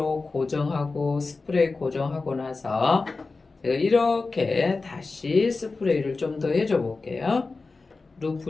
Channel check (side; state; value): right; quieter; 3.9 dB